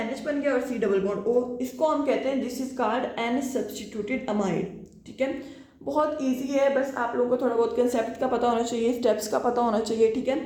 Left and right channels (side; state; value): both; identical; correlation 1.00